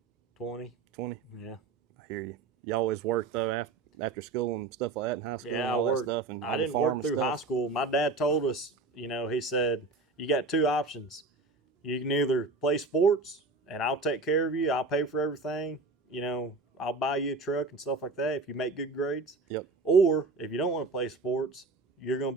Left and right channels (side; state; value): left; quieter; 3.7 dB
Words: 20. 20? Yeah. I hear you. You always worked, though, after school and stuff like that in high school? Yeah, I worked. Stuff and I didn't work through high school. My dad told us, he said, you got 2 options. You can either play sports, and I'll take care of you. I'll pay for everything. I'll buy you a truck and stuff like that if you make good grades. Yep. Or if you don't want to play sports, you're going to